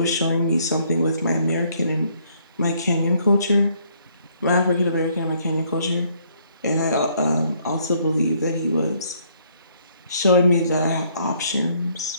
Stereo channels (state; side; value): inverted; both; correlation -0.67